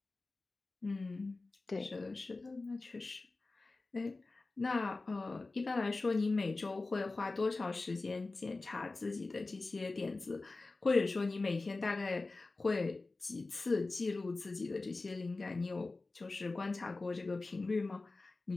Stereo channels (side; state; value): right; quieter; 3.4 dB